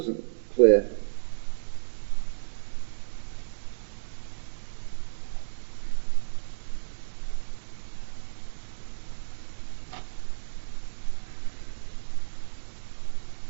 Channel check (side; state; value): left; silent; digital silence